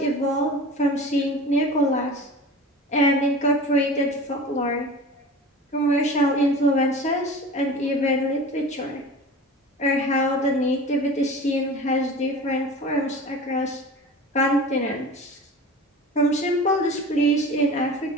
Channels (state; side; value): normal; both; correlation 0.36